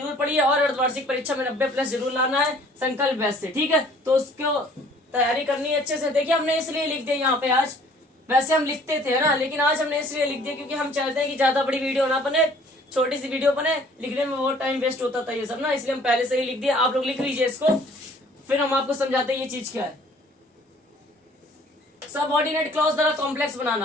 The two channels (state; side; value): normal; both; correlation 0.55